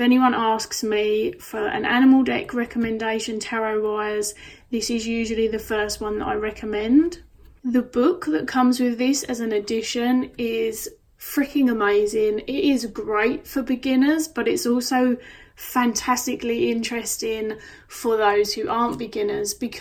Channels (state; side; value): identical; both; correlation 1.00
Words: anyone asks me for an animal deck recommendation tarot wise, this is usually the first one that I recommend. The book that comes with this as an addition is freaking amazing. It is great for beginners, but it's also fantastically interesting for those who aren't beginners,